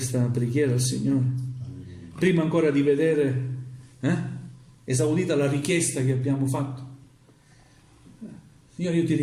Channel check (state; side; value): identical; both; correlation 1.00